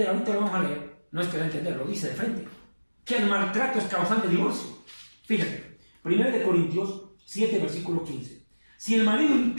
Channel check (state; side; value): inverted; both; correlation -1.00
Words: ahorita lo vamos a leer, no es que da a entender, lo dice de frente, que el maltrato es causante de divorcio. Fíjate, 1 de Corintios 7, versículo 15. Si el marido